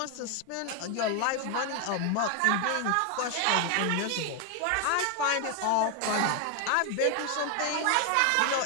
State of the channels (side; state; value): both; different; correlation 0.01